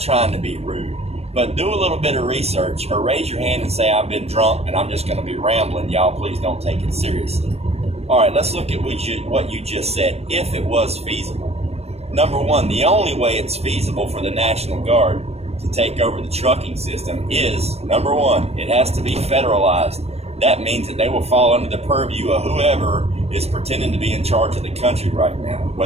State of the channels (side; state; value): left; late; 0.30 ms